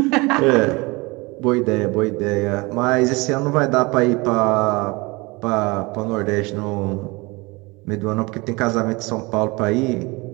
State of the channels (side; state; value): left; quieter; 25.0 dB